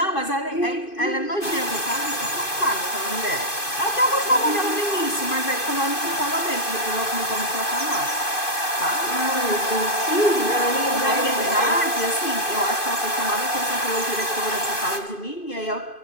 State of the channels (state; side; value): late; right; 2.5 ms